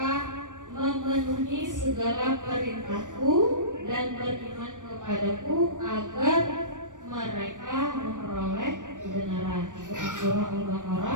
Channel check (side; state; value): left; late; 0.87 ms